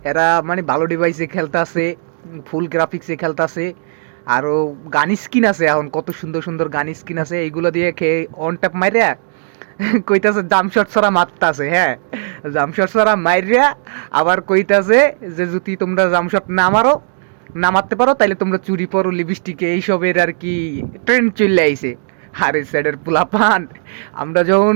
এরা মানে ভালো ডিভাইসে খেলতাছে, ফুল গ্রাফিক্সে খেলতাছে। আরো গান স্কিন আছে, এখন কত সুন্দর সুন্দর গান স্কিন আছে, এইগুলো দিয়ে খেয়ে অন ট্যাপ মাইরা কইতাছে জামশট ছাড়া মারতাছে। হ্যাঁ, জামশট ছাড়া মাইরিয়া আবার কইতাছে যে যদি তোমরা জামশট না মারো, না মারতে পারো, তাইলে তোমরা চুরি পরো লিপস্টিকে, এইসবের আর কি ট্রেন্ড চলে আইছে। আরে স্যারের পোলাপান, আমরা যখন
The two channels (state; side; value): silent; left; digital silence